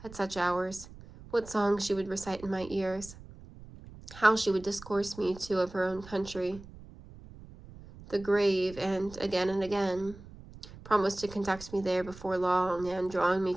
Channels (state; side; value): noise; right; rumble, 18 dB below the sound